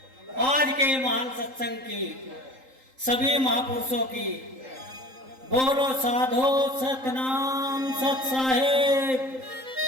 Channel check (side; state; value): left; late; 3.8 ms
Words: आज के महान सत्संग की, सभी महापुरुषों की। बोलो साधो सतनाम सत साहेब।